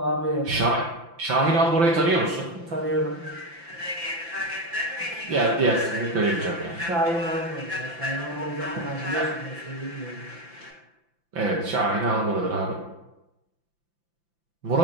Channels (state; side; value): late; left; 5.9 ms